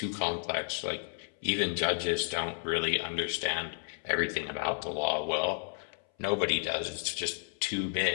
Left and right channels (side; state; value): right; silent; 56 dB below the other